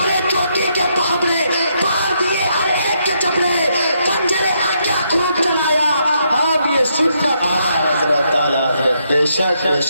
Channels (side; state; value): both; inverted; correlation -0.77